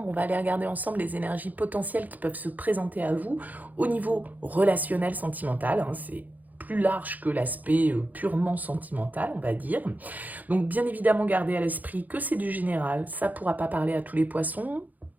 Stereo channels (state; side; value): late; left; 0.081 ms